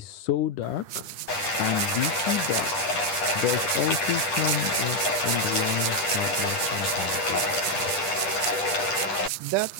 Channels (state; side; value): late; right; 10 ms